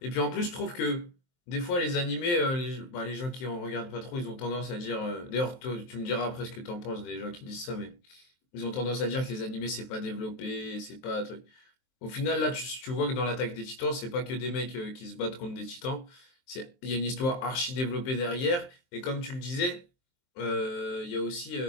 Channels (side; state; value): right; late; 23 ms